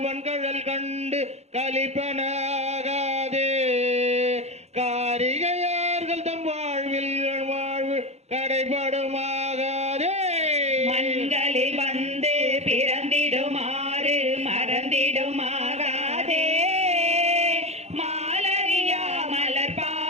கழல் கண்டு கலிப்பனாகாதே, காரிகையார்கள் தம் வாழ்வில் வாழ்வு கடைபடுமாகாதே. மண்களில் வந்து பிறந்திடுமாறு மறந்திடுமாகாதே, மாலரியா மலர்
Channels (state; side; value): late; left; 0.31 ms